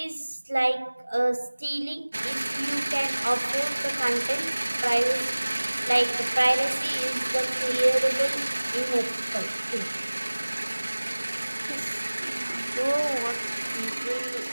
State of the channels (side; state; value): both; inverted; correlation -1.00